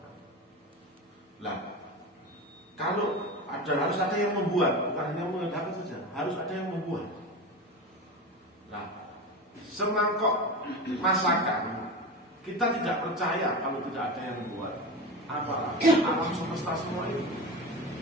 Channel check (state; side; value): normal; both; correlation 0.25